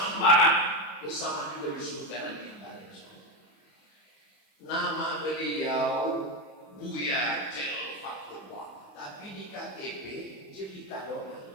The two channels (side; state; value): right; late; 27 ms